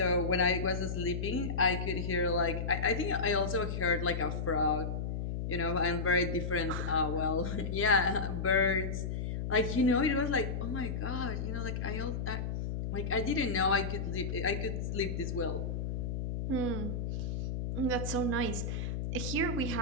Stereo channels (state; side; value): noise; left; hum, 3 dB below the sound